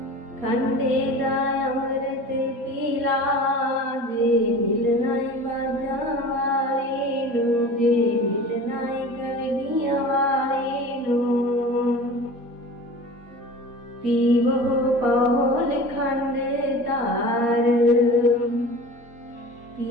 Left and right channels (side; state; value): left; late; 4.2 ms